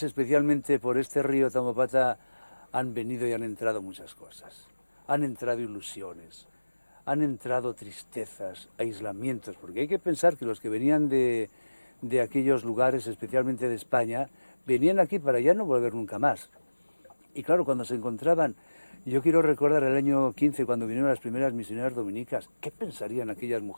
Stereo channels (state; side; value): inverted; both; correlation -1.00